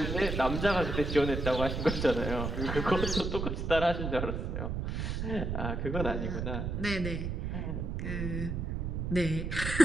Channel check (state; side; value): noise; right; rumble, 2 dB below the sound